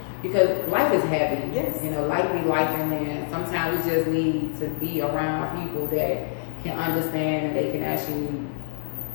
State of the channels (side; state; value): right; silent; 62 dB below the other